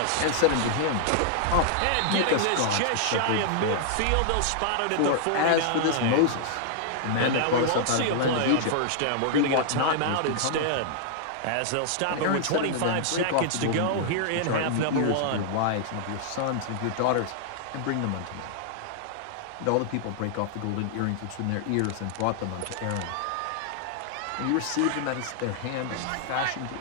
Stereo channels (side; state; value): both; different; correlation -0.01